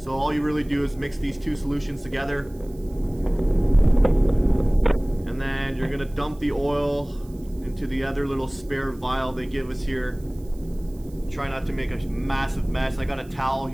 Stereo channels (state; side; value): noise; right; hiss, 27 dB below the sound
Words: all you really do is mix these two solutions together. And then you're gonna dump the oil into the other little spare vial they give us here. Try not to make a massive mess. I got a towel